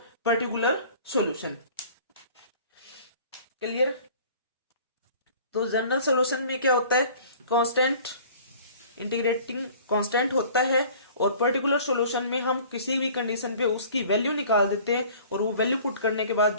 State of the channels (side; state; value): both; inverted; correlation -0.48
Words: पर्टिकुलर सॉल्यूशन। क्लियर। तो जनरल सॉल्यूशन में क्या होता है, कांस्टेंट इंटीग्रेटिंग कांस्टेंट होता है, और पर्टिकुलर सॉल्यूशन में हम किसी भी कंडीशन पे उसकी वैल्यू निकाल देते हैं, और वो वैल्यू पुट करने के बाद